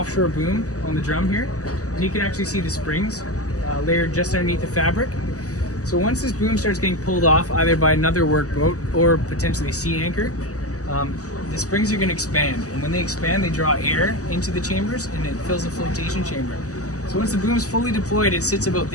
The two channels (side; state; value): right; late; 0.66 ms